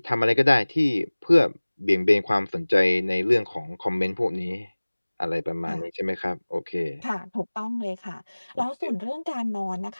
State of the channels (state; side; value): inverted; both; correlation -1.00